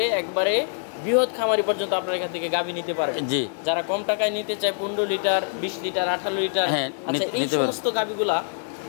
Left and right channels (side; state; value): right; silent; 59 dB below the other